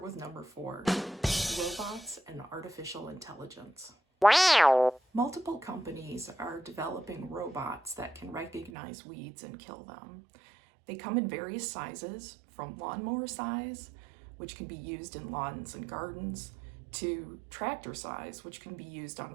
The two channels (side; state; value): left; drops out; at 8.7 s